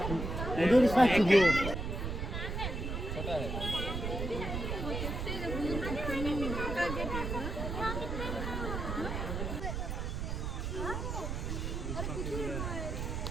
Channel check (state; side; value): noise; right; rumble, 3 dB below the sound